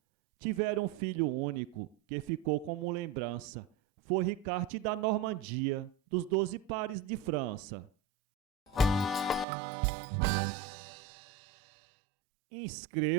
Tiveram um filho único, que ficou como lembrança. Foi Ricarte da Normandia, dos 12 pares de França.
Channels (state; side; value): drops out; left; at 9.5 s